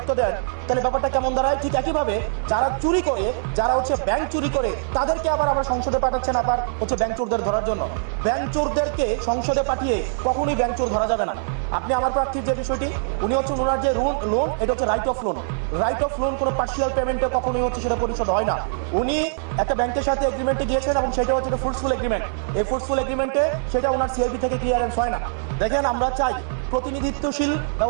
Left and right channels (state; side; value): silent; left; 64 dB below the other